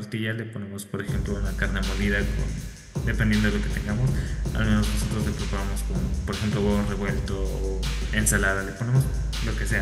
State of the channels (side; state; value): both; identical; correlation 1.00